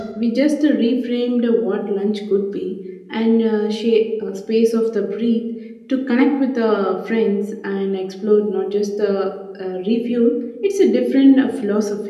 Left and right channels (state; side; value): identical; both; correlation 1.00